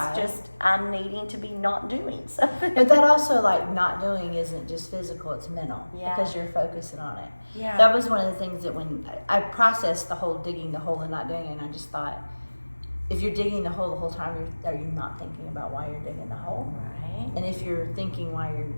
just I'm needing to be not doing something. But that also, like, not doing isn't just physical, it's mental. Yeah. Because you're focusing on it. Yeah. That was one of the things that when I processed the whole digging the hole and not doing it, and I just thought, if you're digging the hole time, are you not thinking about why you're digging the hole? Right. And if you're thinking why you're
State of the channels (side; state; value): both; inverted; correlation -1.00